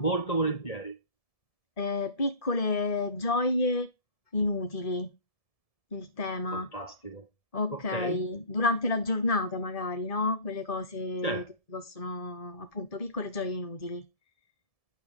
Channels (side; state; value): right; late; 1.7 ms